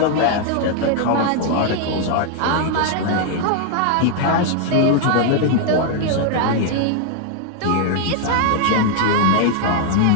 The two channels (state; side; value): different; both; correlation 0.00